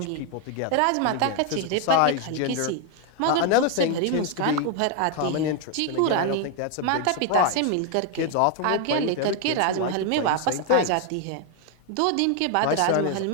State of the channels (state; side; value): different; both; correlation 0.01